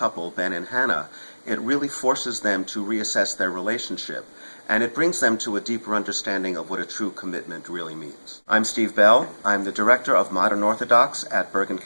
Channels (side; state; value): both; inverted; correlation -1.00